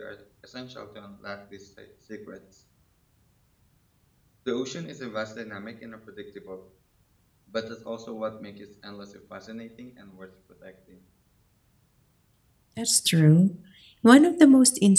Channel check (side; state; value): both; identical; correlation 1.00